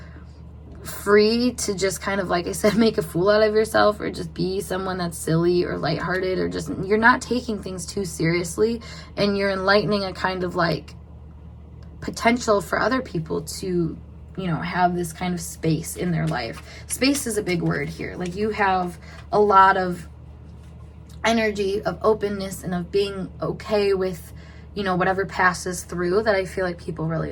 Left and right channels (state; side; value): identical; both; correlation 1.00